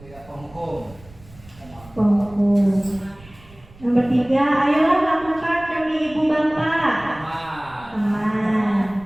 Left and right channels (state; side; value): noise; right; rumble, 23 dB below the sound